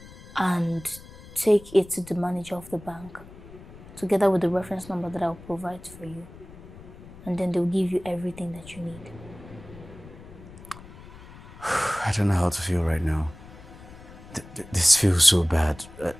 and take it to the manager of the bank, together with the reference number that I'll provide for you. And then they'll give you everything that you need. I don't know how to feel right now. This feels so bad.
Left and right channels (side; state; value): left; noise; rumble, 18 dB below the sound